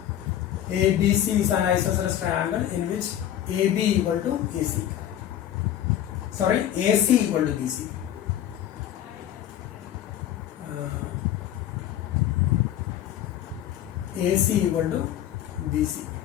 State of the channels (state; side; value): quieter; right; 11.4 dB